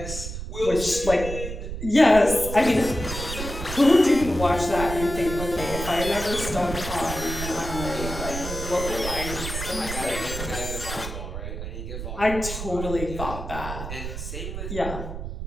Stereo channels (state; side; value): noise; right; rumble, 7 dB below the sound